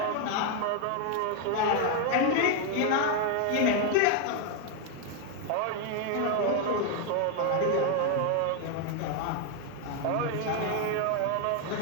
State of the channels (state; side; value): different; both; correlation 0.00